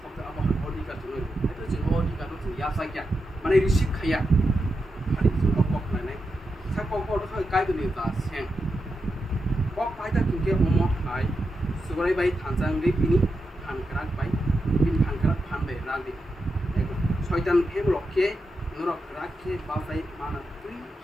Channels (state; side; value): normal; both; correlation 0.88